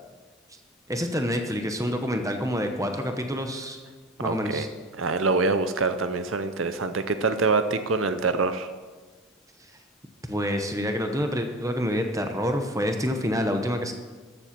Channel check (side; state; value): both; normal; correlation 0.33